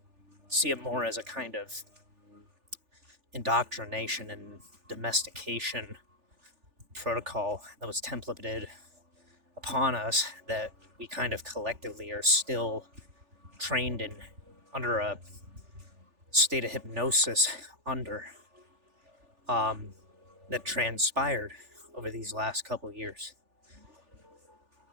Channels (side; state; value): left; late; 3.4 ms